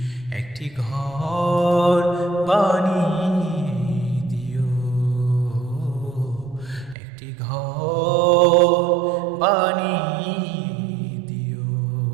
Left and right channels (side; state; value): left; drops out; at 7.0 s